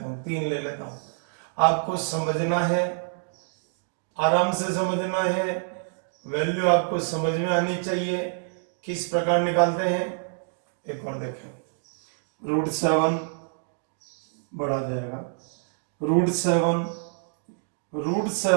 3 ले लेता हूं, आपको समझना है, आराम से समझना है, वैल्यू आपको समझ में आनी चाहिए, किस प्रकार निकालते हैं। एक और देखें, √7 बढ़ा जाएगा, √7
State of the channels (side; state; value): left; silent; digital silence